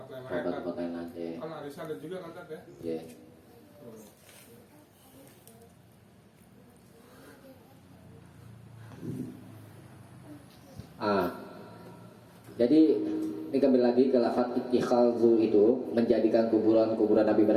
lain tempat lain aja. kan arisan ada juga kan Tat, ya. Ya. Oh. Jadi ini kembali lagi ke lafaz ittikhadzu itu, menjadikan kuburan Nabi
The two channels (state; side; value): identical; both; correlation 1.00